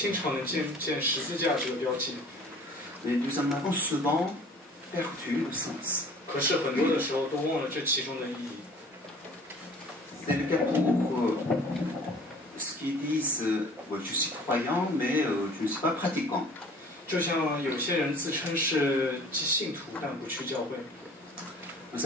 常能见十字架这个标记。 Mais nous en avons souvent perdu le sens. 可是很多的时候都忘了这其中的意义。 C'est le cas pour ceux qui disent je suis croyant, mais je ne suis pas pratiquant. 就像有些人自称是信徒，但不去教会。 Vous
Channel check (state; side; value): normal; both; correlation 0.49